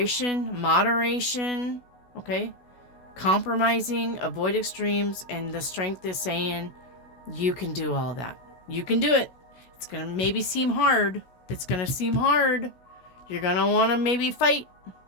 moderation, okay? Compromising, avoid extremes, and the strength is saying you can do all that. You can do it. It's going to maybe seem hard. It's going to seem hard. You're going to want to maybe fight,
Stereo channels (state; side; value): late; right; 16 ms